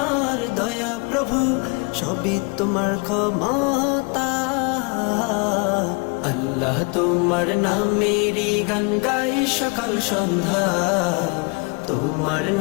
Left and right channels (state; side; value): quieter; right; 29.5 dB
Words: দয়া প্রভু, সবই তোমার ক্ষমতা। আল্লাহ তোমার নামেরই গান গাই সকাল সন্ধ্যা, তোমার